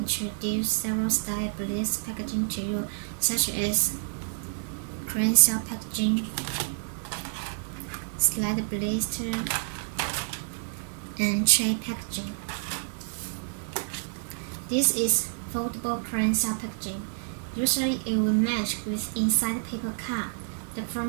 several style bliss packaging to you, such as crane shell packaging, slide blister, and tray packaging. This is foldable crane shell packaging. Usually it will match with inside paper card. The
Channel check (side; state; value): left; silent; digital silence